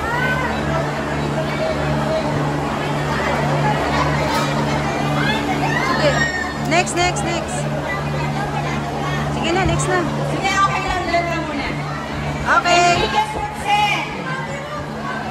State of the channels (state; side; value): identical; both; correlation 1.00